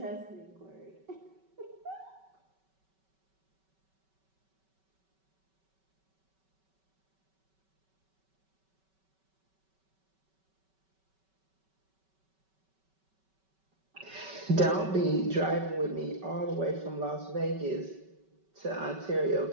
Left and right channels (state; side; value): late; left; 5.2 ms